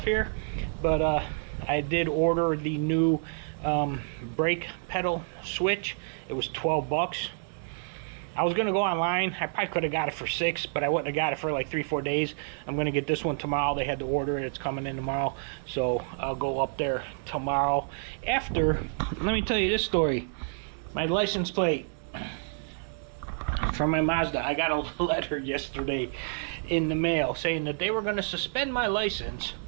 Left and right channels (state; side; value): silent; left; digital silence